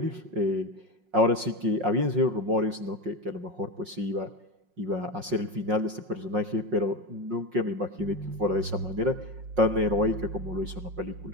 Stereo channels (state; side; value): late; left; 5.5 ms